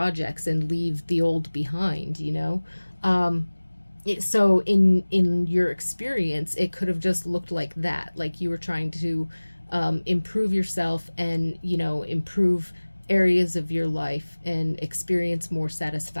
and leave the old behind, you know. So in your experience, it could have just looked like that, like you were trying to improve yourself, and, you know, improve areas of your life and experience more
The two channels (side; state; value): both; inverted; correlation -1.00